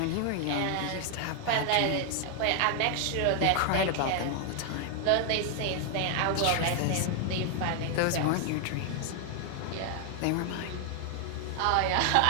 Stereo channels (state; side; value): different; both; correlation 0.00